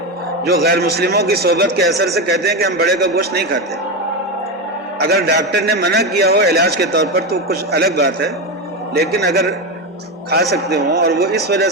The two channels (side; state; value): both; normal; correlation 0.14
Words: جو غیر مسلموں کی صحبت کے اثر سے کہتے ہیں کہ ہم بڑے کا گوشت نہیں کھاتے۔ اگر ڈاکٹر نے منع کیا ہو علاج کے طور پر تو کچھ الگ بات ہے، لیکن اگر کھا سکتے ہوں اور وہ اس وجہ